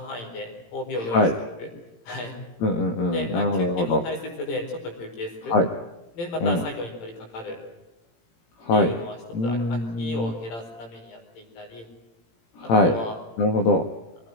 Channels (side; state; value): right; late; 18 ms